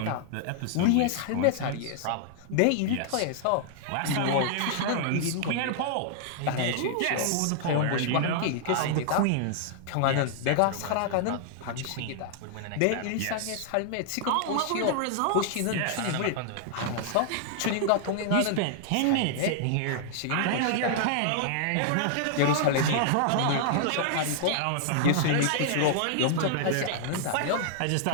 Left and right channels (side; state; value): both; different; correlation 0.00